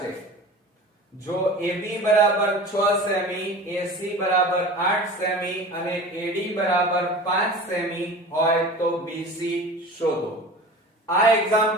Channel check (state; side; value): normal; both; correlation 0.37